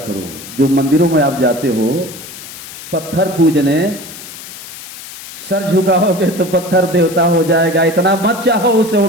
जो मंदिरों में आप जाते हो पत्थर पूजने, सर झुकाओगे तो पत्थर देवता हो जाएगा, इतना मत चाहो उसे, वो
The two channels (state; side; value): noise; left; hiss, 14 dB below the sound